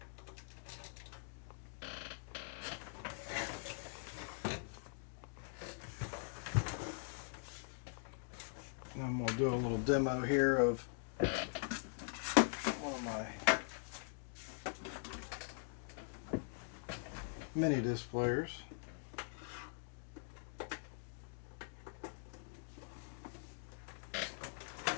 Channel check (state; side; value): silent; right; digital silence